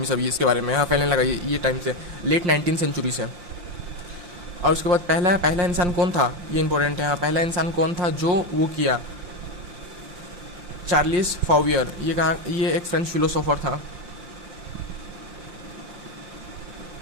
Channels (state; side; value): late; left; 5.7 ms